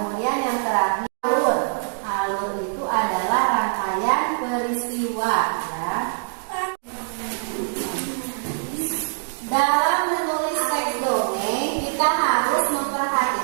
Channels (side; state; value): left; silent; digital silence